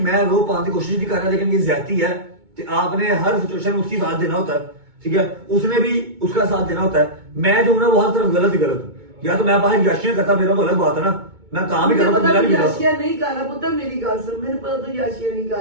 मैं रो पाने की कोशिश नहीं कर रहा, लेकिन ये ज्यादती है कि आपने हर सिचुएशन में उसकी साथ देना होता है, ठीक है, उसने भी उसका साथ देना होता है। मैं जो हूं ना वो हर तरफ गलत ही गलत हूँ, या तो मैं बाहर याशियां करता, मेरा तो अलग बात है ना, मैं काम ही कर रहा हूं, याशिया नहीं कर रहा पुत्र, मेरी गाल सुन, मैंने पता तो याशिया नहीं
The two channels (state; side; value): late; left; 2.2 ms